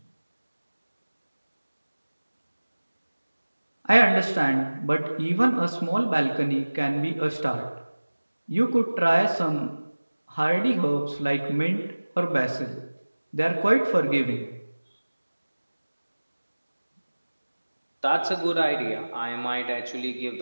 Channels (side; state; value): both; inverted; correlation -1.00